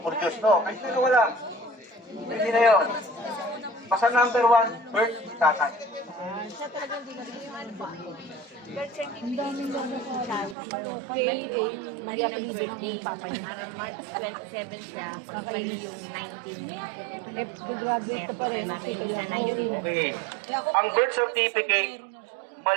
no? Kahit na wala. Hindi na yun. Basta number 1, birth ni tatay. Mali ang birthday. Parang March 27 siya. Mali yung 19. Graduate pa rin. Siya 19. Okay. Ang birth certificate,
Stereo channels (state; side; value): drops out; left; at 10.6 s